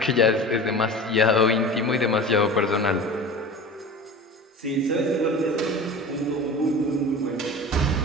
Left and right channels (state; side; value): normal; both; correlation 0.35